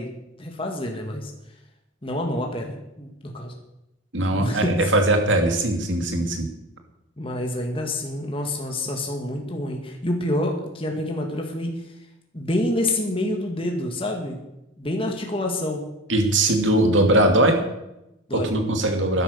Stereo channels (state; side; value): normal; both; correlation 0.32